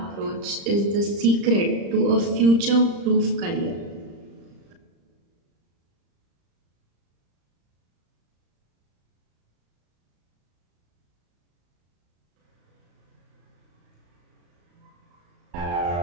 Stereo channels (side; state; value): left; late; 35 ms